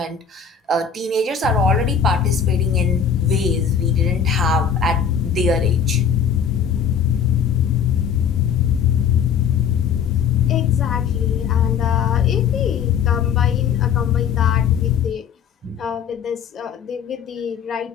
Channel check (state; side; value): quieter; right; 7.3 dB